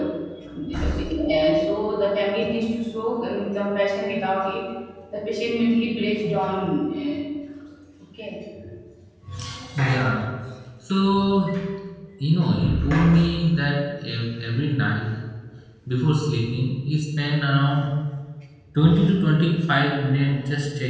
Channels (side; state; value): both; identical; correlation 1.00